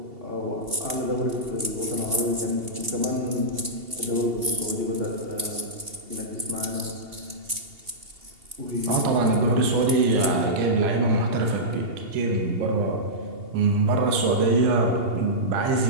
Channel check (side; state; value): left; late; 2.8 ms